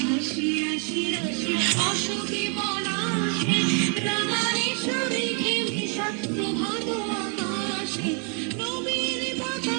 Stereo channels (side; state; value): left; quieter; 38.3 dB